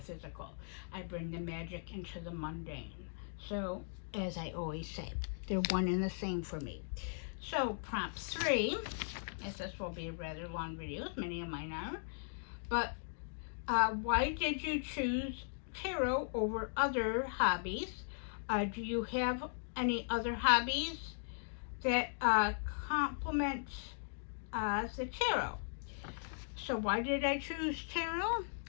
I bring the magic into the mundane. So, as I always say, they're one and the same for me. So, prompt 3, as this will be a rather long video, as many of mine are, but why did you choose tarot over other hobbies? Do you have any other hobbies that complement the tarot? So why did I choose tarot?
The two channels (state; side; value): silent; right; digital silence